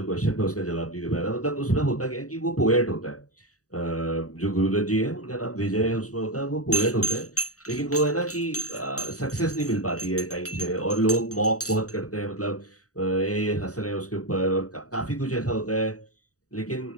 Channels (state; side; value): late; right; 0.66 ms